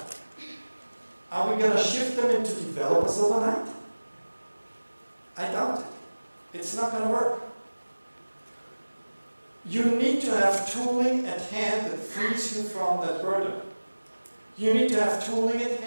Are we going to shift them into developers overnight? I doubt it. It's not going to work. You need to have tooling at hand that frees you from that burden. You need to have tooling at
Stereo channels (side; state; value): both; inverted; correlation -1.00